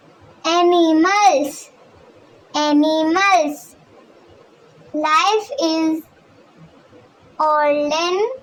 animals. Life is olden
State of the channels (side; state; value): both; identical; correlation 1.00